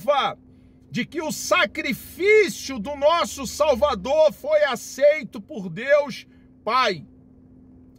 de que o sacrifício do nosso Salvador foi aceito por Deus Pai.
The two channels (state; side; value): identical; both; correlation 1.00